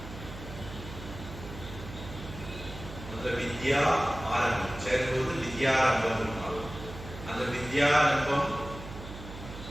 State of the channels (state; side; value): noise; right; hum, 12 dB below the sound